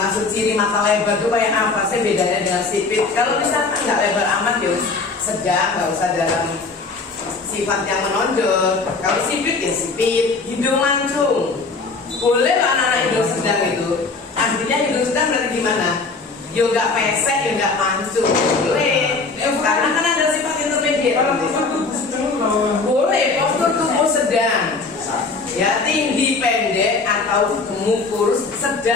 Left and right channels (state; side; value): quieter; right; 4.0 dB